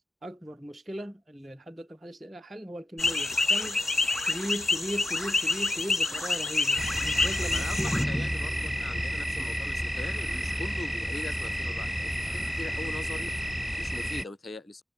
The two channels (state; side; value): normal; both; correlation 0.87